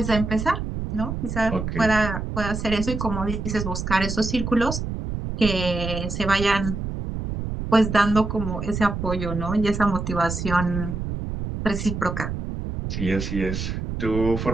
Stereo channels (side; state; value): right; noise; rumble, 4 dB below the sound